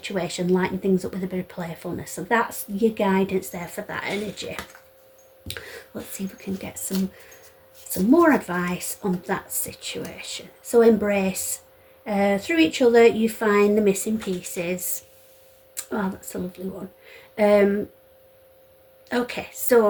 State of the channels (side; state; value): both; identical; correlation 1.00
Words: lighten things up with a bit of playfulness. So that's your guidance there for that energy. Let's see if we can get some more advice on that situation. So embrace. Through each other you find the missing pieces. Oh, that's a lovely one. Okay,